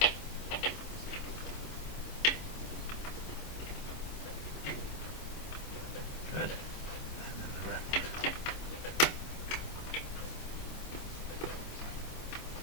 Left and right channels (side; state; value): right; late; 25 ms